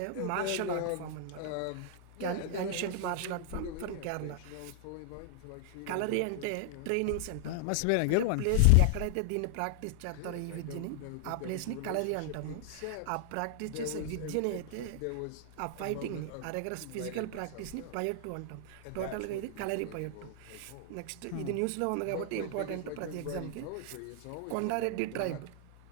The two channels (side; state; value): both; different; correlation 0.00